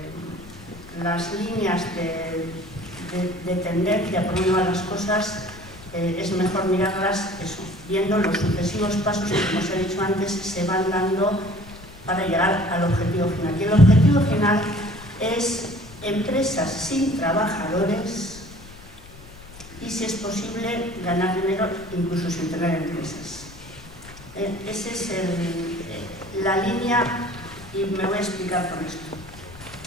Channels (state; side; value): noise; left; rumble, 20 dB below the sound